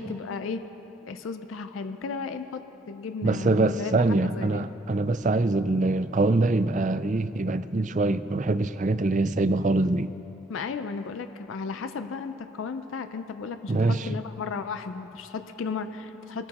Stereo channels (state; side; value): normal; both; correlation 0.64